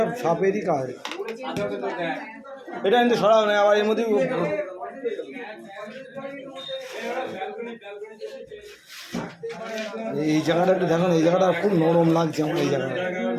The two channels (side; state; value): both; identical; correlation 1.00